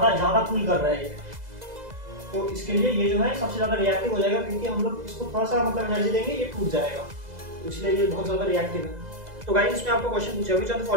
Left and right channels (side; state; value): left; late; 2.0 ms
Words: पुल कर रहा है। तो इसके लिए ये जो है सबसे ज्यादा रिएक्टिव हो जाएगा, क्योंकि हम लोग इसको थोड़ा सा मतलब एनर्जी देंगे ये टूट जाएगा, इसलिए ये बहुत ज्यादा रिएक्टिव है। तो गाइस इसमें आपको क्वेश्चन पूछा which of the